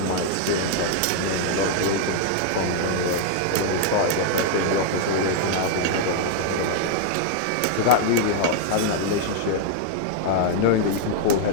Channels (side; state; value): both; different; correlation 0.00